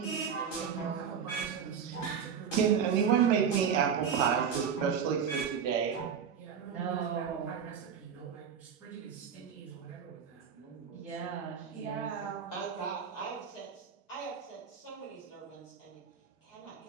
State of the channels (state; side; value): quieter; left; 7.3 dB